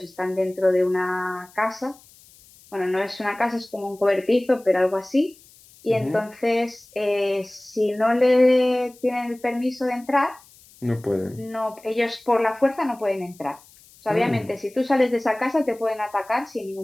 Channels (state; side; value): noise; left; hiss, 26 dB below the sound